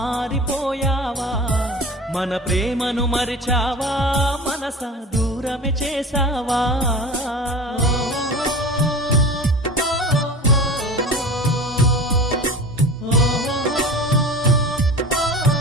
మన ప్రేమను మరిచావా మనసా దూరమే చేసావా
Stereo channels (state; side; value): normal; both; correlation 0.34